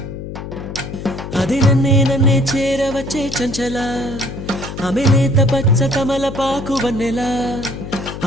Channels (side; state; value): left; noise; hum, 9 dB below the sound